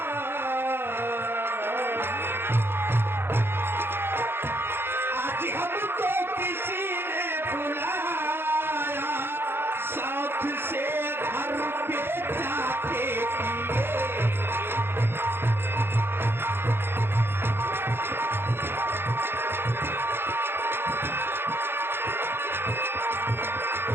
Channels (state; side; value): late; left; 0.11 ms